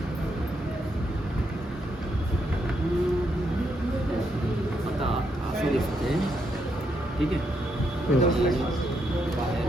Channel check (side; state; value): both; normal; correlation 0.78